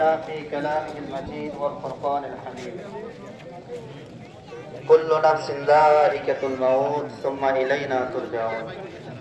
في كلامه المجيد والفرقان الحميد كل نفس ذائقة الموت ثم إلينا ترجعون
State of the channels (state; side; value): identical; both; correlation 1.00